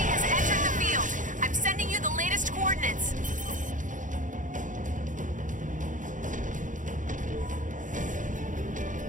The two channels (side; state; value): left; late; 0.37 ms